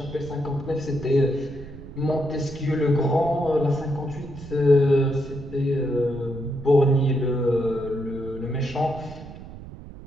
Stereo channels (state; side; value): noise; right; rumble, 14 dB below the sound